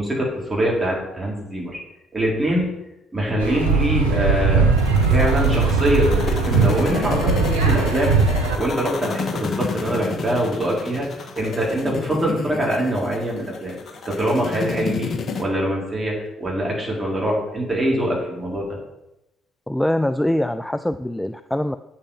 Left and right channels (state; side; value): normal; both; correlation 0.60